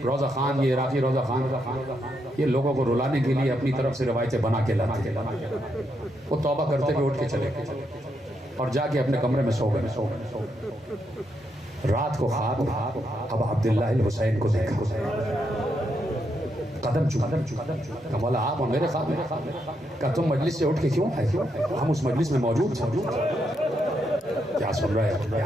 روزہ خان، یہ عراقی روزہ خان، یہ لوگوں کو رلانے کے لیے اپنی طرف سے روایتیں بنا کے لاتے ہیں۔ وہ توبہ کرتے ہوئے اٹھ کے چلے اور جا کے اپنے کمرے میں سو گئے۔ رات کو خواب ابا عبداللہ الحسین کو دیکھا، قدم چکا، مولا آپ میرے خواب میں، کہا تم مجلس سے اٹھ کے کیوں آئے؟ ہم اس مجلس میں موجود تھے۔ کیا سن رہے ہیں؟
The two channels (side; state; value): both; normal; correlation 0.80